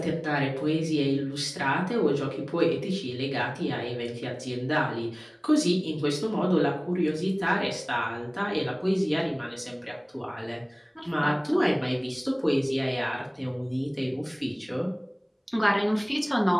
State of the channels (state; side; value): identical; both; correlation 1.00